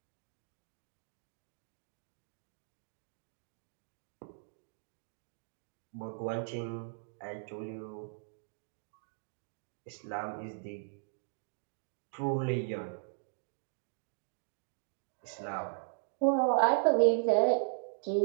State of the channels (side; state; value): left; silent; digital silence